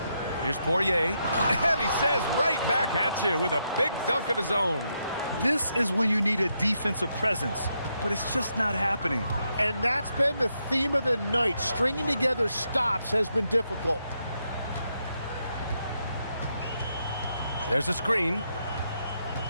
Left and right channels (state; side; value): inverted; both; correlation -0.80